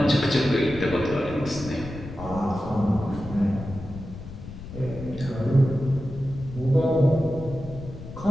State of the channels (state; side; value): noise; left; rumble, 12 dB below the sound